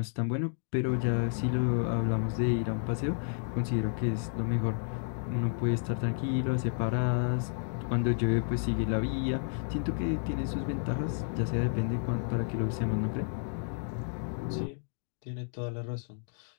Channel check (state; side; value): silent; right; digital silence